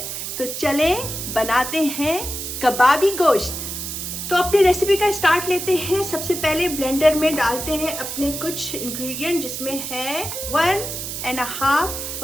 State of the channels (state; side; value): noise; right; hiss, 6 dB below the sound